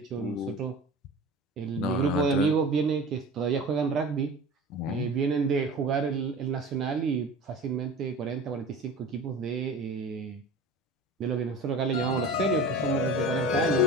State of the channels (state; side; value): normal; both; correlation 0.36